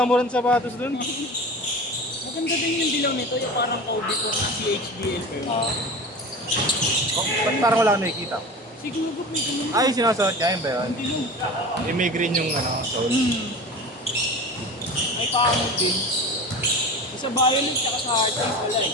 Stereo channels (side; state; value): both; normal; correlation 0.33